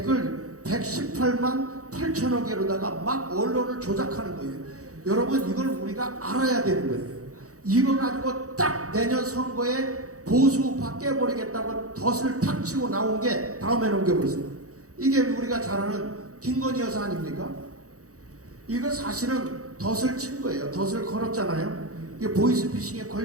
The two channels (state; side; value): late; left; 0.65 ms